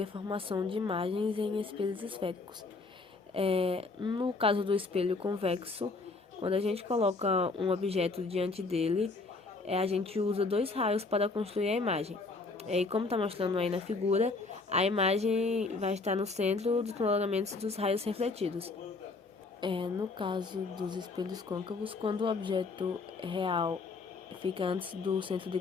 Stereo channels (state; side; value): quieter; right; 3.8 dB